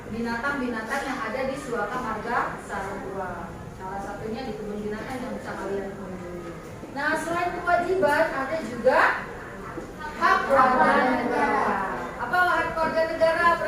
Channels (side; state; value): both; identical; correlation 1.00